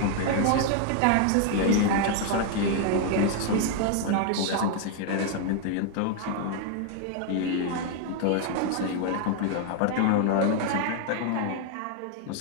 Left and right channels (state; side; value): different; both; correlation 0.00